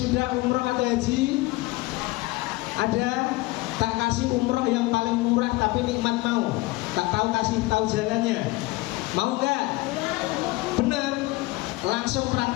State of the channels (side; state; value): right; quieter; 21.3 dB